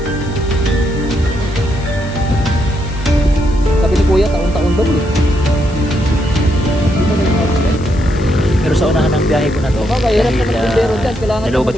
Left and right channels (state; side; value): noise; left; hiss, 22 dB below the sound